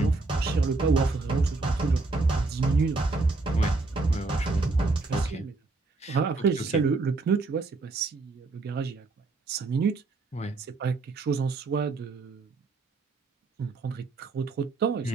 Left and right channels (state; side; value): quieter; left; 3.6 dB